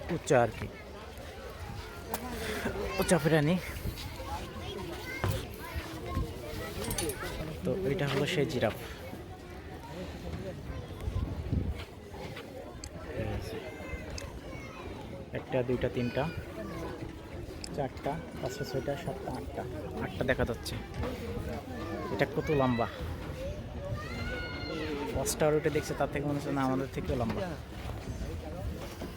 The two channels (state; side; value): identical; both; correlation 1.00